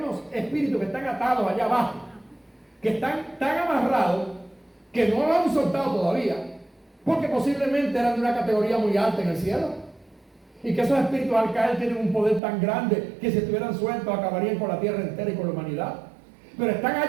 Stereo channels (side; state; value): left; drops out; at 12.4 s